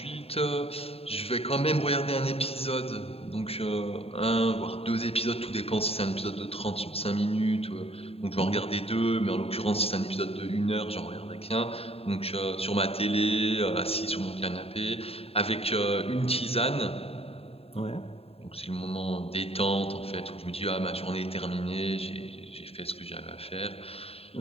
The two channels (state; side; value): late; right; 0.28 ms